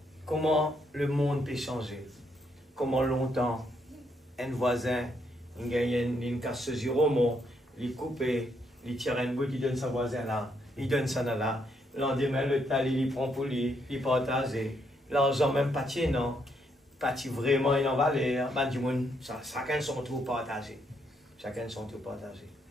Comment le monde peut changer. Comment longtemps un voisin, il gagne une casse zéro, il coupe, il tire un bout, il donne sa voisin là, il donne ça là. Lendemain, le tal, il prend pour lui, il partage. L'argent même pas tient, non. Pas vraiment, il en valeur. Chacun son tour partagé. Chacun son tour partagé.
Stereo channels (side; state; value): both; normal; correlation 0.75